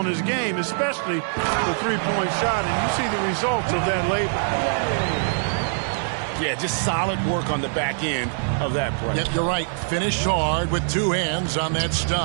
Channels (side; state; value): left; silent; digital silence